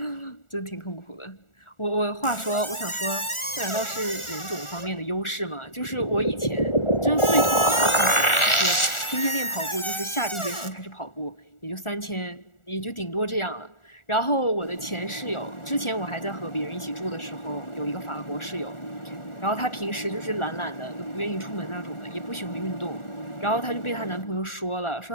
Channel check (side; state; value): right; late; 1.4 ms